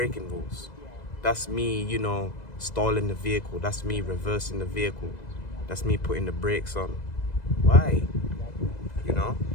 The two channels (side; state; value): right; late; 2.0 ms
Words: rules? That's me, stalling the vehicle. That's me reversing the vehicle. That's me putting the brakes on. Why?